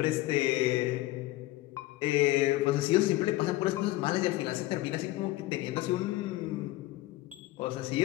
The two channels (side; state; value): right; quieter; 17.4 dB